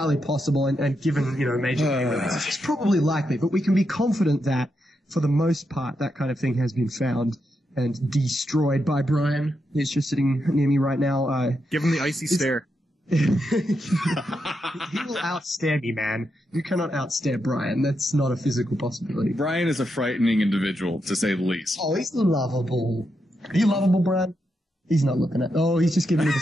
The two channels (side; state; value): both; normal; correlation 0.84